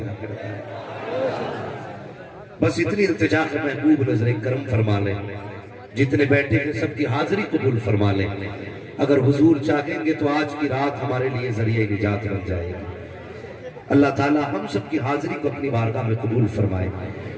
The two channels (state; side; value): identical; both; correlation 1.00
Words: बस इतनी इल्तिजा है महबूब नजर करम फरमा लें, जितने बैठे हैं सबकी हाजिरी कबूल फरमा लें। अगर हुजूर चाहेंगे तो आज की रात हमारे लिए जरिए निजात बन जाएगी। अल्लाह ताला हम सबकी हाजिरी को अपनी बारगाह में कबूल फरमाए।